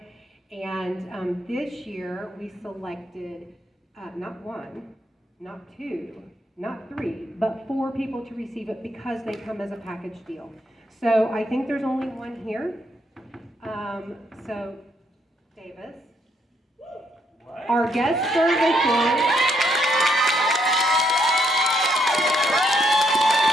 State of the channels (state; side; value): normal; both; correlation 0.74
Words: And this year, we selected not one, not two, not three, but 4 people to receive it because they come as a package deal. So I think there's only one here. So Davis. What? Our guest services.